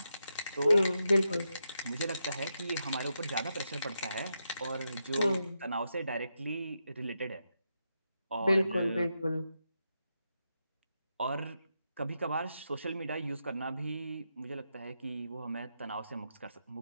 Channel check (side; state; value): both; inverted; correlation -0.85